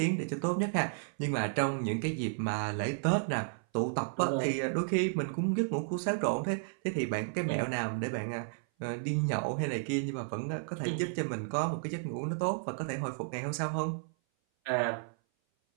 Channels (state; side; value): silent; left; 56 dB below the other